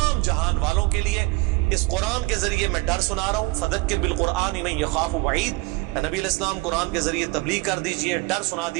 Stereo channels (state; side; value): quieter; left; 23.6 dB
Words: جہان والوں کے لیے. اس قرآن کے ذریعے میں ڈر سنا رہا ہوں. فذکر بالقرآن من یخاف وعید, نبی علیہ السلام قرآن کے ذریعے تبلیغ کر دیجئے, ڈر سنا